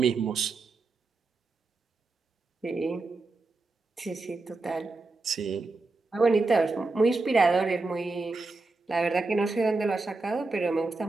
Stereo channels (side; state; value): left; quieter; 3.6 dB